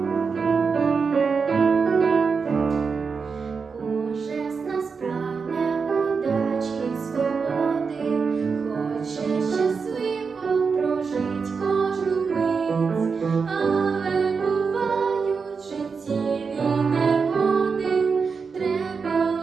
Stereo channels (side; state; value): left; quieter; 5.3 dB